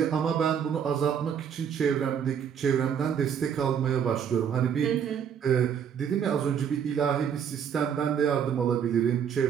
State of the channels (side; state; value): left; quieter; 8.0 dB